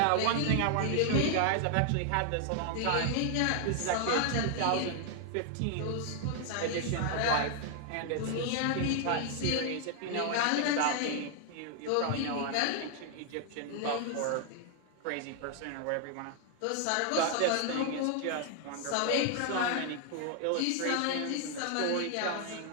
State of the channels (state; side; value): different; both; correlation 0.00